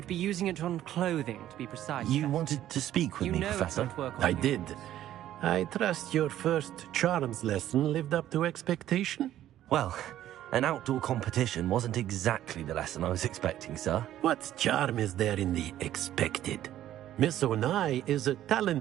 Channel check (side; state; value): left; quieter; 12.5 dB